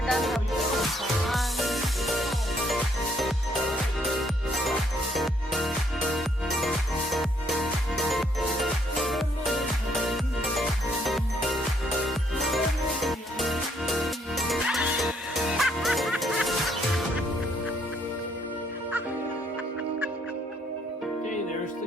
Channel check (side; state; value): both; normal; correlation 0.69